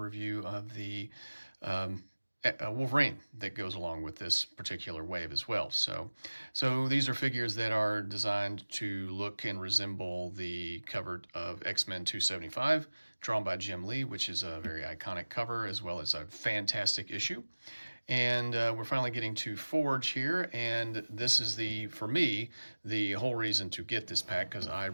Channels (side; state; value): both; inverted; correlation -1.00